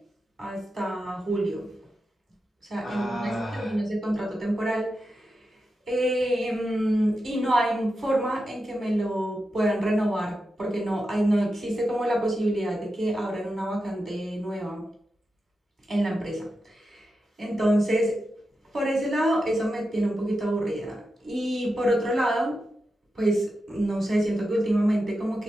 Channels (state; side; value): normal; both; correlation 0.89